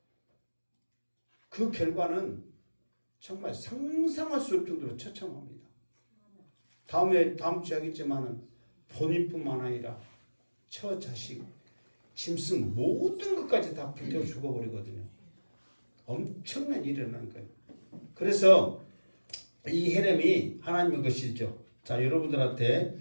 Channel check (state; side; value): inverted; both; correlation -1.00